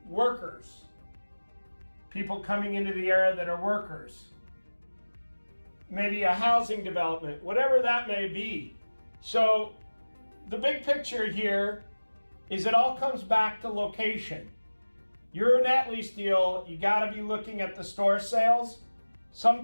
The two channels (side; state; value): both; inverted; correlation -1.00